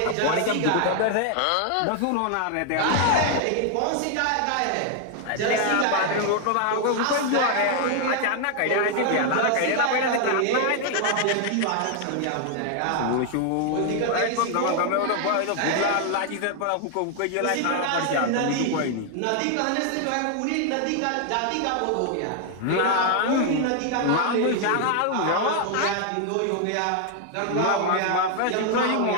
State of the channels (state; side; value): different; both; correlation 0.00